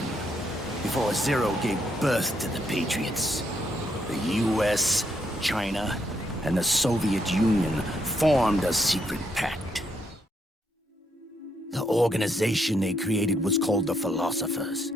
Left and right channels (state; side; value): normal; both; correlation 0.75